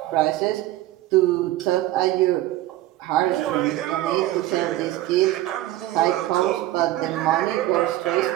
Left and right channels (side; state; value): left; quieter; 15.3 dB